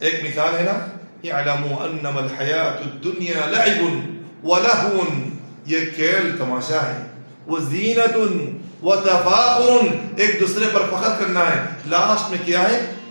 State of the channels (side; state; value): both; inverted; correlation -1.00